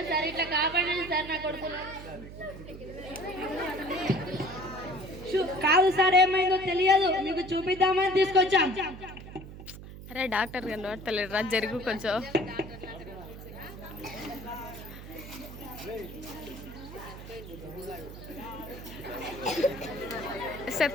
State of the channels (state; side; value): noise; right; hum, 13 dB below the sound